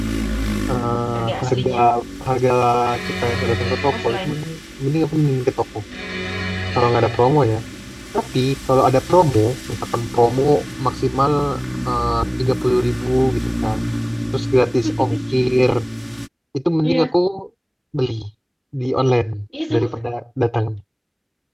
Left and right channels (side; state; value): both; identical; correlation 1.00